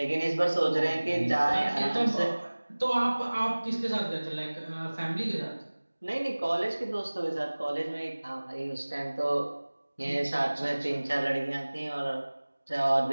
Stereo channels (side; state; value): both; inverted; correlation -1.00